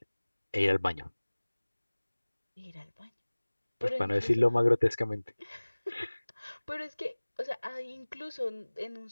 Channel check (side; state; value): both; inverted; correlation -1.00